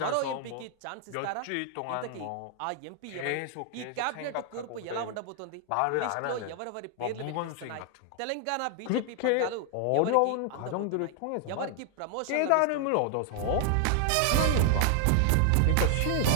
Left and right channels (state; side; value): different; both; correlation 0.00